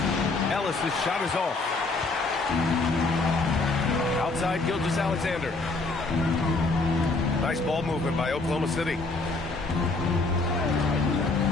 Ellis' shot is off. Outside Gilgeous-Alexander. Nice ball movement by Oklahoma City.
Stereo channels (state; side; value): quieter; right; 3.5 dB